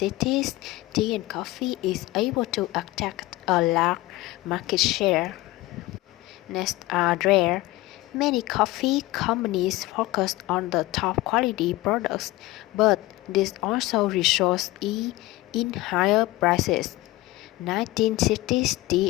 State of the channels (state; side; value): quieter; right; 18.8 dB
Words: tea and coffee is able to attract a large market share. Next are rare. Many coffee companies focus on the top quality products, but this also results in higher prices. 1960s